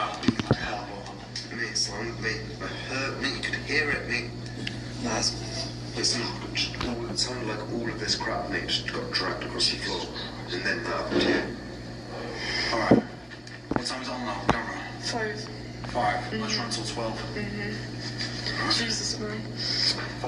beating like hell, bro. Mate, son, mate, it hurt, mate. You could hear it, mate. That's. Listen, it sounded like all of this crap, mate, just got dragged across the floor, and then that. Yeah. All right. What time is it on now? Camera. 5. Let's run till 12. Jesus, man.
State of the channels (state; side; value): identical; both; correlation 1.00